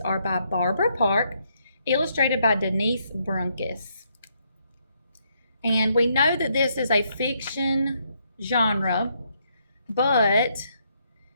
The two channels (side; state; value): both; inverted; correlation -0.74